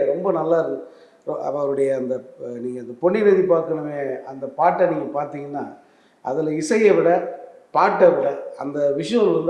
ரொம்ப நல்லா இருக்கு. அவருடைய அந்த நீங்கள் அந்த பொன்னி நதி பார்க்கணுமே அந்த பாட்டை நீங்கள் பார்த்தீங்கன்னா அதில் இசையை விட பாட்டை விட அந்த விஷுவல்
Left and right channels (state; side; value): identical; both; correlation 1.00